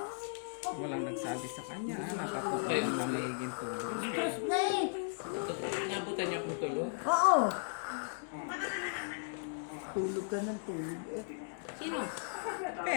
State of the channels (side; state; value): right; silent; digital silence